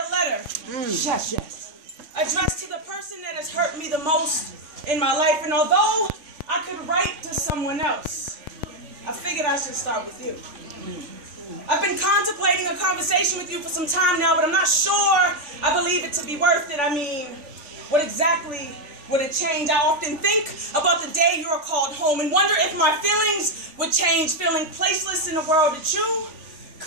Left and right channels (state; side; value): late; left; 3.4 ms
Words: letter. Yes, yes. Addressed to the person that has hurt me the most in my life. And although I could write to someone else, I figured I should start with you. I've been contemplating a conversation with you for some time now, but I'm not sure I believe it to be worth it. I mean, what exactly would it change? I often think about the day you are called home and wonder if my feelings would change, feeling placeless in a world that you